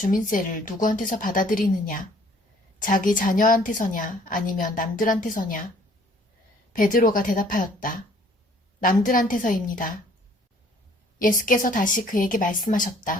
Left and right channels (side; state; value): both; normal; correlation 0.58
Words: 누구한테서 받아들이느냐? 자기 자녀한테서냐 아니면 남들한테서냐? 베드로가 대답하였다. 남들한테서입니다. 예수께서 다시 그에게